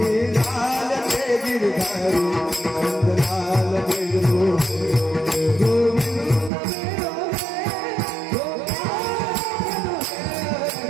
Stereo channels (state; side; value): drops out; left; at 6.5 s